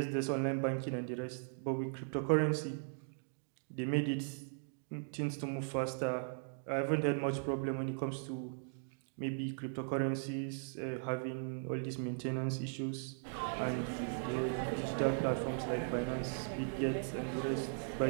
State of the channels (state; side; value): silent; left; digital silence